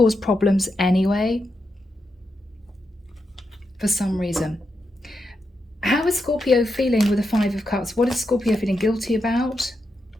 problems anyway for some reason. How is Scorpio feeling with the Five of Cups? What is Scorpio feeling guilty about?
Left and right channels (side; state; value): both; normal; correlation 0.86